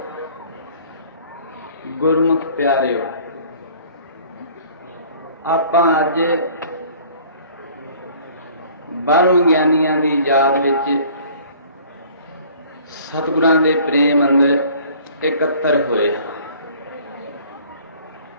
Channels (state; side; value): inverted; both; correlation -0.52